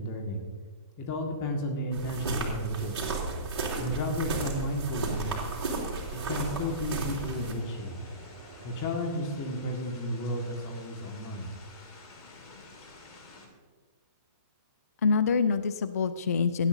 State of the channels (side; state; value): both; inverted; correlation -0.43